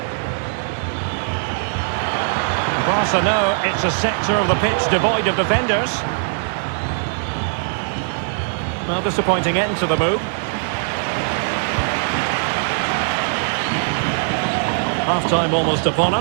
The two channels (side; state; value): left; silent; digital silence